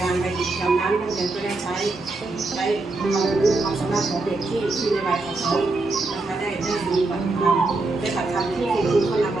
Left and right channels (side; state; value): left; quieter; 3.2 dB